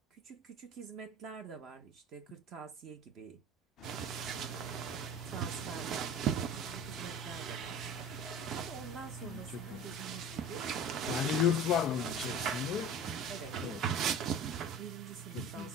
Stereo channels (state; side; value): normal; both; correlation 0.38